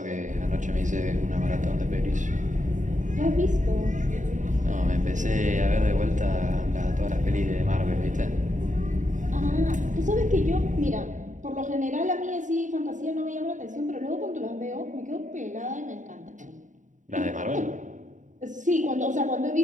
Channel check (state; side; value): late; left; 0.36 ms